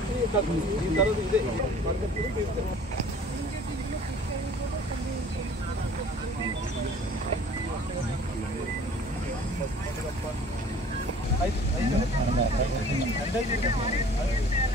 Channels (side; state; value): both; normal; correlation 0.50